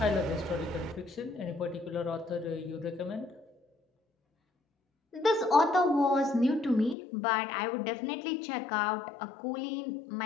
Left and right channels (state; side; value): drops out; right; at 7.0 s